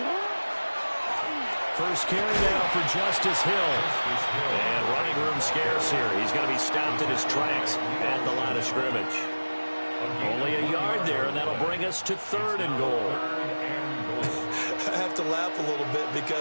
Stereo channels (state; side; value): inverted; both; correlation -1.00